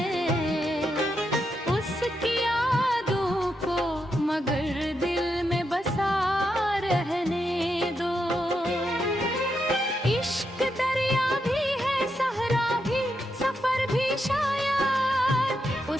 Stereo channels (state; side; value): normal; both; correlation 0.83